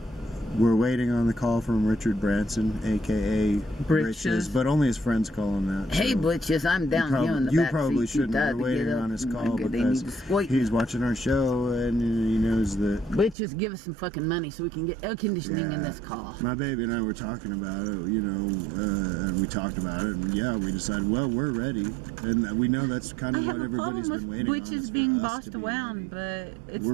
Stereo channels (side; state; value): left; drops out; at 13.4 s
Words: we're waiting on the call from Richard Branson, aka Britches, but only his friends call him that. Hey, so Britches, I'm down here in the you back probably seat. shouldn't Too tired be to waiting get up. on his They call need because to exploit he's me. watching our show and he knows that. Britches, give us some fucking money so we can get air conditioning in this car. My baby and I were talking about it, and we talked about it, and we decided, well, we're ready, and we know that's kind of what everybody's been waiting on. Britches is for being us bossed to be around, ready. but it's We're